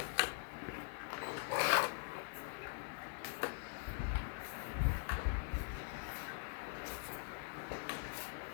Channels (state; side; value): quieter; right; 36.7 dB